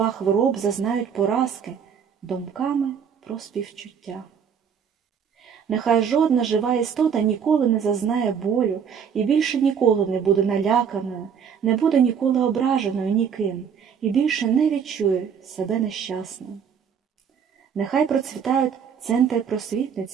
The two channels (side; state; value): left; quieter; 7.3 dB